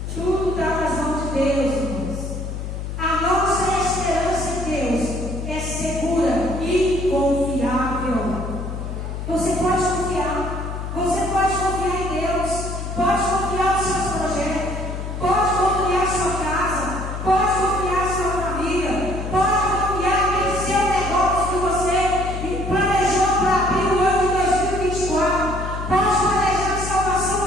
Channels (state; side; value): noise; left; hum, 6 dB below the sound